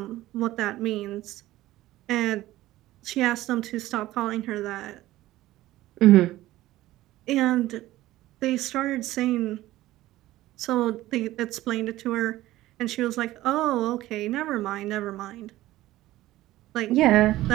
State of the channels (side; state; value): left; quieter; 16.0 dB